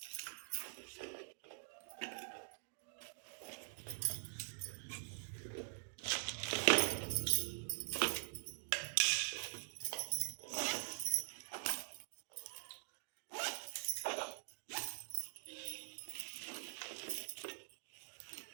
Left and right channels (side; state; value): left; silent; digital silence